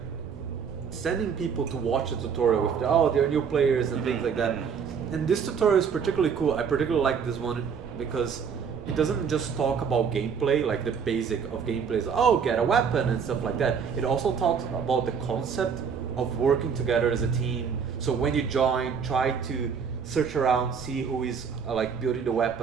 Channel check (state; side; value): quieter; left; 6.6 dB